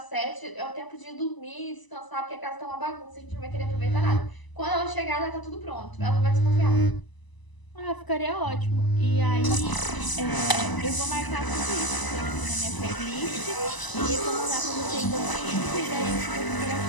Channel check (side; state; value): right; late; 1.0 ms